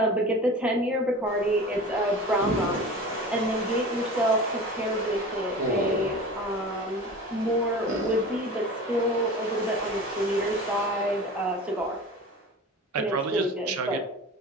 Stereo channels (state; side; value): normal; both; correlation 0.36